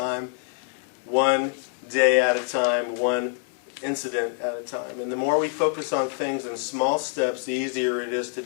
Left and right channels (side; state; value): right; silent; 56 dB below the other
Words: one day at a time, one incident at a time. And the more we focus on things in small steps, the easier it is to